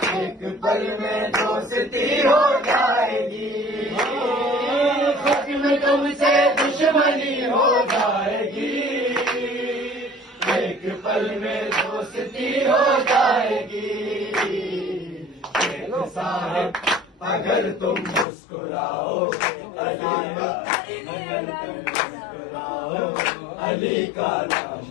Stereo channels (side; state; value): right; drops out; at 18.2 s